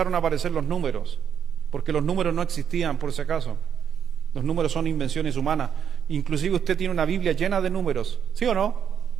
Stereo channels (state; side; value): quieter; left; 8.2 dB